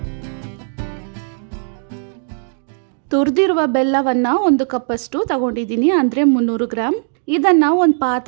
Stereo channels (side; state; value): left; silent; digital silence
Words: ತುರಿದಿರುವ ಬೆಲ್ಲವನ್ನು 1 ಕಪ್ಪಷ್ಟು ತಗೊಂಡಿದ್ದೀನಿ, ಅಂದರೆ 300 ಗ್ರಾಮ್. ಇದನ್ನು ಒಂದು